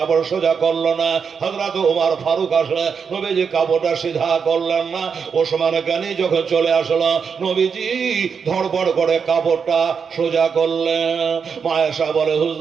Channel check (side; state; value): left; quieter; 6.2 dB